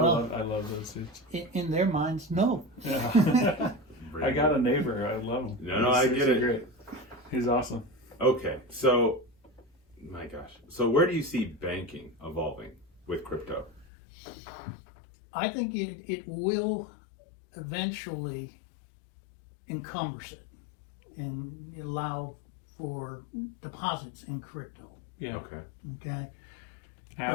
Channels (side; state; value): right; drops out; at 13.9 s